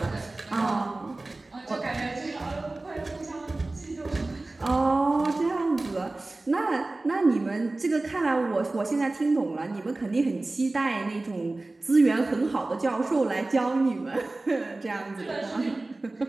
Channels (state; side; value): quieter; left; 3.0 dB